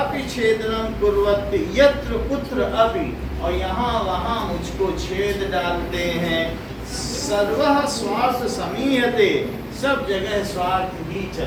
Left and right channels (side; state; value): both; identical; correlation 1.00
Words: छेदनं कुर्वन्ति यत्र कुत्र अपि, और यहाँ वहाँ मुझको छेद डालते हैं। सर्वः स्वार्थ समीयते, सब जगह स्वार्थ ही